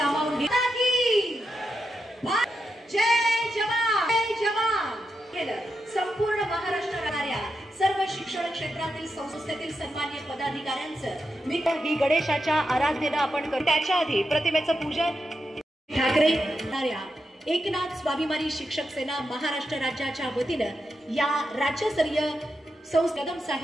घेतात की जय जवान जय जवान केलं। संपूर्ण महाराष्ट्रातल्या सर्व शिक्षण क्षेत्रातील संस्थेतील सन्माननीय पदाधिकाऱ्यांचं मी गणेशाच्या आराधनेला आपण करू। त्याच्या आधी प्रतिमेचं पूजन ठाकरे एकनाथ स्वाभिमानी शिक्षक सेना महाराष्ट्र राज्याच्या वतीनं या राज्यस्तरीय कदम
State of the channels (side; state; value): both; normal; correlation 0.87